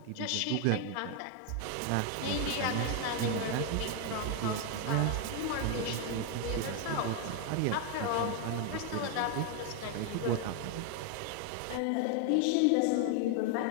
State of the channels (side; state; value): both; different; correlation 0.00